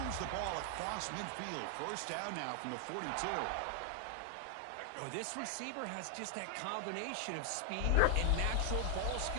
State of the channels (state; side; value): different; both; correlation 0.00